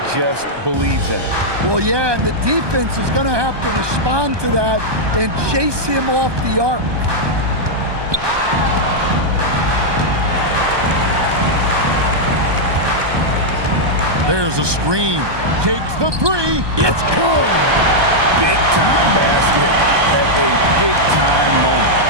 just believes in it. Well, yeah, and the defense is going to have to respond to that and chase him off the arc. There's a screen. Takes the three. It's good. Big-time basket at a big-time moment.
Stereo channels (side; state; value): left; late; 1.2 ms